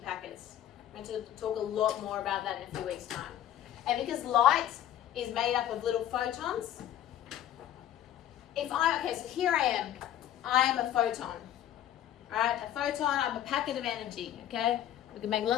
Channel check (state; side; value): quieter; right; 11.6 dB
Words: packets. I'm going to talk a lot more about that in a few weeks' time. And because light is made up of little photons, so here I am a photon, all right? A photon, I'm a packet of energy, okay? We can make